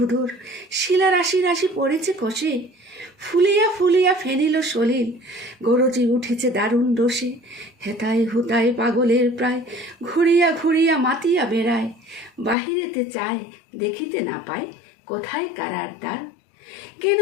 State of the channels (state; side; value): drops out; right; at 12.6 s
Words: শিলা রাশি রাশি পড়েছে কষে, ফুলিয়া ফুলিয়া ফেনিল সলিল, গরজি উঠেছে দারুণ রোষে। হেতায় হুতায় পাগলের প্রায়, ঘুরিয়া ঘুরিয়া মাতিয়া বেড়ায়, বাহিরেতে চায় দেখিতে না পায় কোথায় কারার দ্বার। কেন